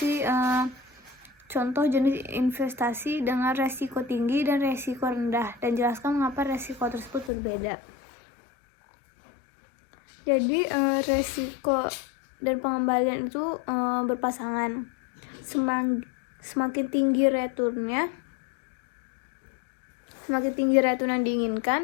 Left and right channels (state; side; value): drops out; right; at 7.3 s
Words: contoh jenis investasi dengan resiko tinggi dan resiko rendah, dan jelaskan mengapa resiko tersebut berbeda. Jadi resiko dan pengembalian itu berpasangan. Semakin tinggi return yang